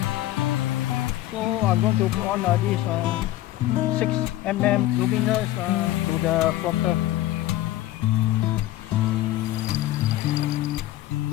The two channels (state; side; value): quieter; right; 15.0 dB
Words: so I'm going to put on this 6mm luminous to the flutter.